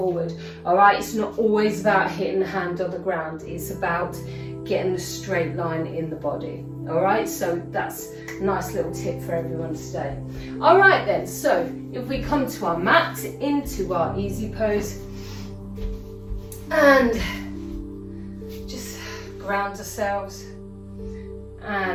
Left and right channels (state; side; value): identical; both; correlation 1.00